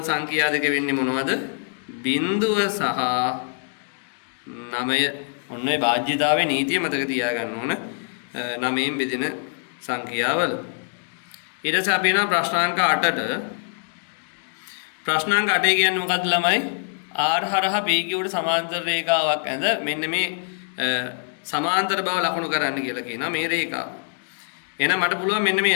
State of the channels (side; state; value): right; silent; digital silence